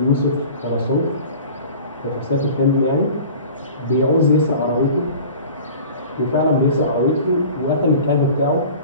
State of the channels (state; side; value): inverted; both; correlation -0.42